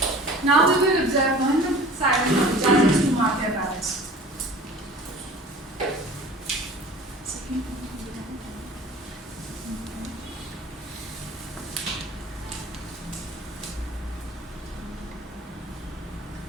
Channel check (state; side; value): normal; both; correlation 0.44